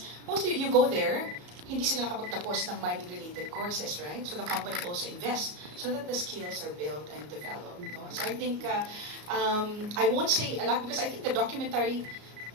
mostly you go there, hindi sila nakapagtapos ng mining-related courses, right? So the company also invests so that the skills are built and developed. No? So I think, I won't say a lot because I think the documentary,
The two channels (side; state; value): left; late; 34 ms